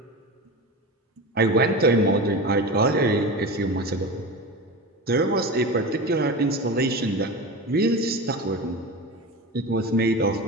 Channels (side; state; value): both; normal; correlation 0.27